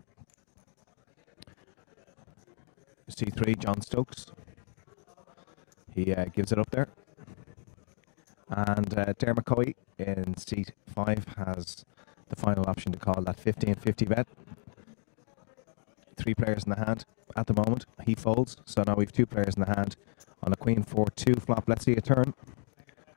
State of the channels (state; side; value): silent; right; digital silence